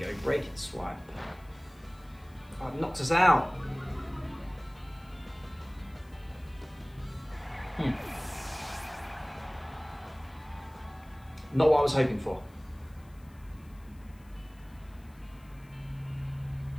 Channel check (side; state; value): left; noise; hiss, 29 dB below the sound